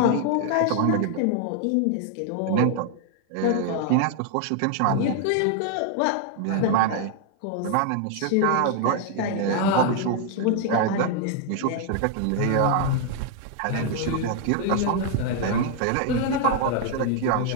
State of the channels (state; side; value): different; both; correlation 0.00